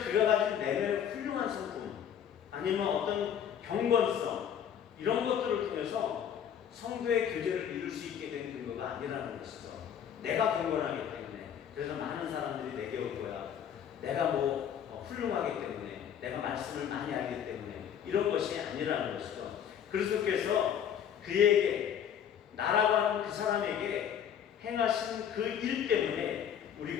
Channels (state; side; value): quieter; right; 8.9 dB